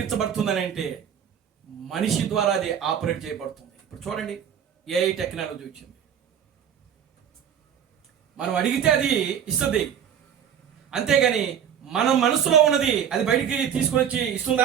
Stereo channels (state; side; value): quieter; left; 8.6 dB